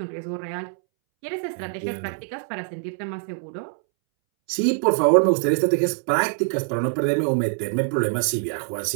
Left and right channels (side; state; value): left; silent; 63 dB below the other